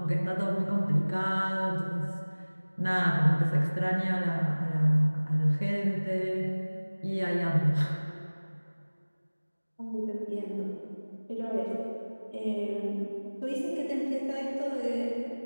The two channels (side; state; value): both; inverted; correlation -1.00